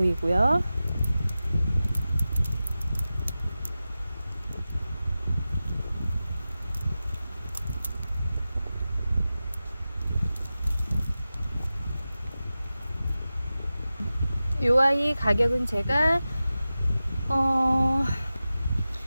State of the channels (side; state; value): both; inverted; correlation -0.94